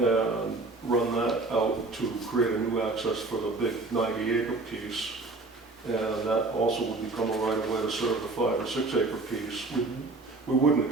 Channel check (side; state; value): left; quieter; 3.3 dB